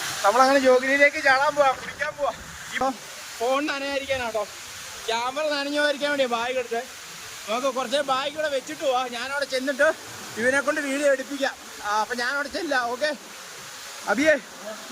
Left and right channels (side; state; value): both; identical; correlation 1.00